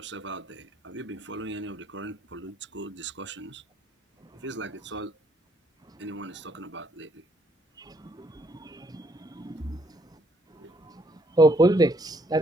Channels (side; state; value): both; normal; correlation 0.69